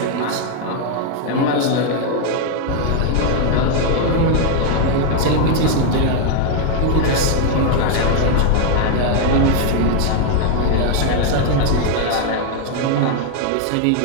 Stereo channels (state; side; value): different; both; correlation 0.00